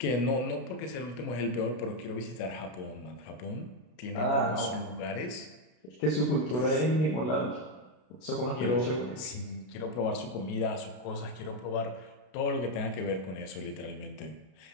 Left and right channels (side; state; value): right; late; 32 ms